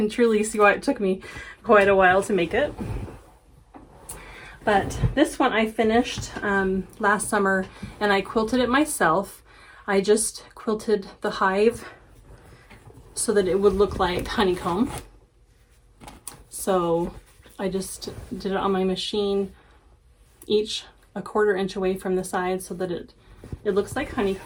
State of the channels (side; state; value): both; identical; correlation 1.00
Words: truly see why it took me quite a while to make it. But this one I finished last summer, and I quilted it myself. I just quilted the hive so that it would look like honeycomb. So I just did it on my machine, each a 1/4 inch away from the side so that it looks like